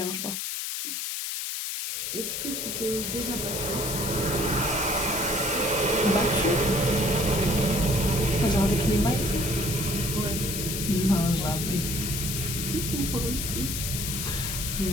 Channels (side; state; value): left; noise; hiss, 3 dB below the sound